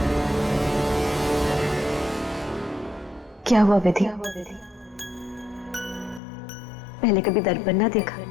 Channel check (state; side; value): drops out; right; at 6.2 s